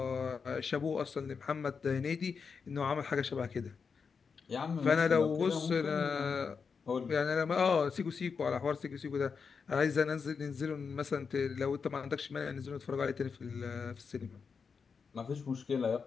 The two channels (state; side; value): quieter; right; 5.6 dB